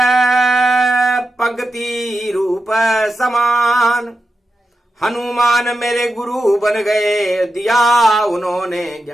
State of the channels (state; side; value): normal; both; correlation 0.89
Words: पंक्ति रूप समान, हनुमान मेरे गुरु बन गए, दिया उन्होंने